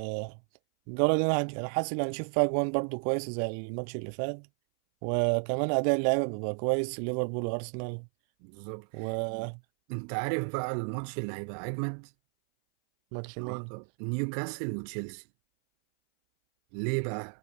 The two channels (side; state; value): left; silent; 57 dB below the other